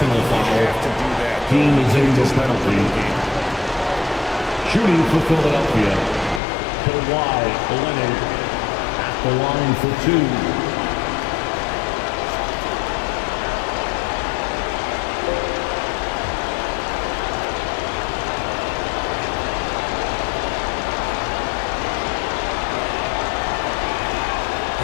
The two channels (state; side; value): drops out; right; at 6.4 s